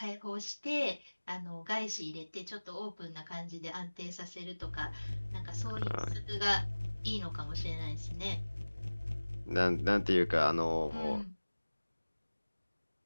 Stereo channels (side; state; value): both; inverted; correlation -1.00